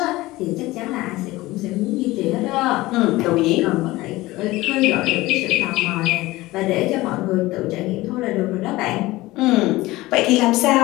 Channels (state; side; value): quieter; right; 19.0 dB